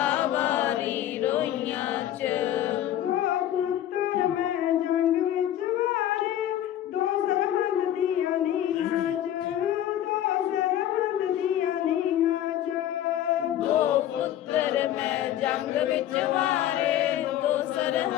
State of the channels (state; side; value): quieter; right; 11.9 dB